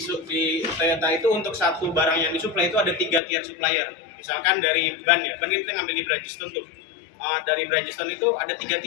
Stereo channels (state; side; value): drops out; right; at 3.2 s